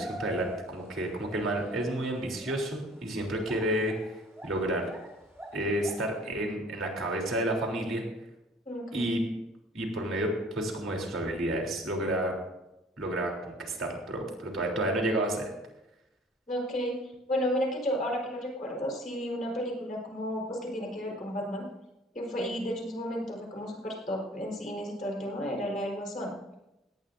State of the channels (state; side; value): normal; both; correlation 0.51